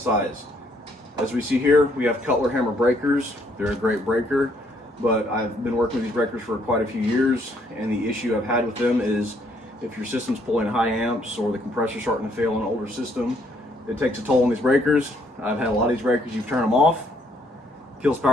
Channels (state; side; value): normal; both; correlation 0.68